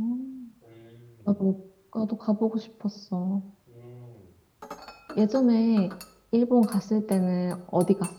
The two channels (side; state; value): both; identical; correlation 1.00